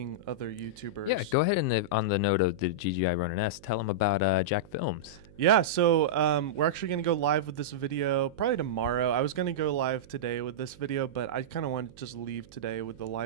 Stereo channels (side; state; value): right; noise; hum, 23 dB below the sound